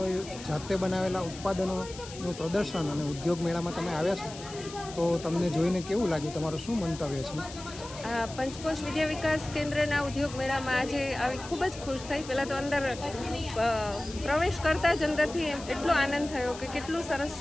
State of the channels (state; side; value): noise; left; hiss, 14 dB below the sound